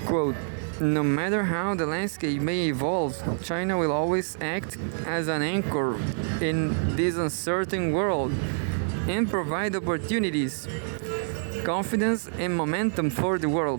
Quote, no matter how the landscape may evolve, China will always act as an anchor in this uncertain world and provide opportunities, confidence, and momentum for the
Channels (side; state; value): left; silent; digital silence